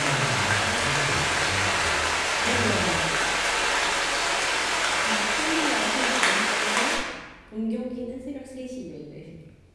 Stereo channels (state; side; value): identical; both; correlation 1.00